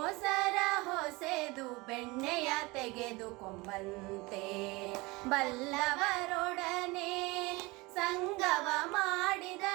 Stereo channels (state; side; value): quieter; left; 23.7 dB